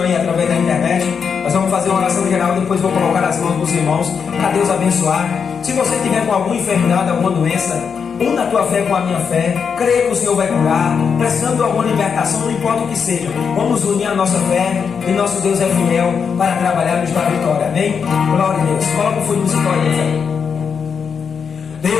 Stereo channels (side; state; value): right; quieter; 6.4 dB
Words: aí através da internet. Nós vamos fazer uma oração geral, depois vou colocar as mãos dos irmãos, para Deus abençoar. Se você tiver com alguma enfermidade, alguma doença, una a tua fé com a minha fé, creia que o Senhor vai curar, precisando de alguma libertação, não importa o que seja, vamos unir a nossa fé, e nosso Deus é fiel para trabalhar nos dar vitória, amém? Glória a Deus. Coloca o fundo musical aí,